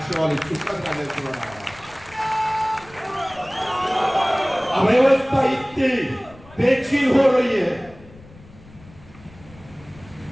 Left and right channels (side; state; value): left; noise; rumble, 22 dB below the sound